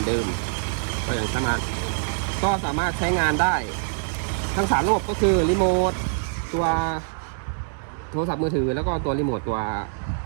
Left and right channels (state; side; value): silent; left; 62 dB below the other